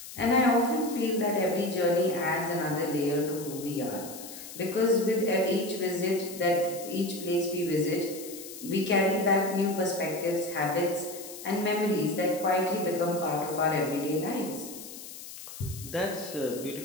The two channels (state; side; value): noise; left; hiss, 13 dB below the sound